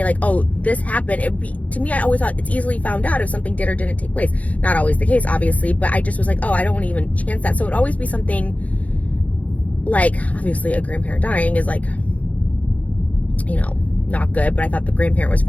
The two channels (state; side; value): late; right; 0.069 ms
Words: like, oh, this happened, it would be, to me, I always thought it's easily found out if something did or didn't take place. Not always the case, obviously, but I just was like, oh, I don't want to even chance that. So it would always be something like, obviously a grandparent dying is like, you know, not good, but I thought the grandparent was